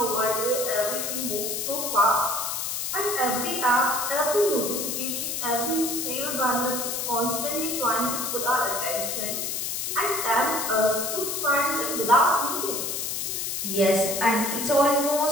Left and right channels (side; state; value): left; noise; hiss, 2 dB below the sound